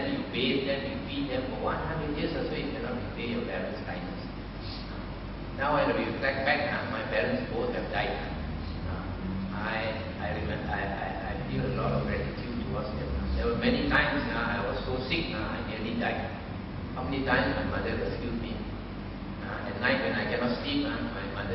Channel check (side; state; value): both; identical; correlation 1.00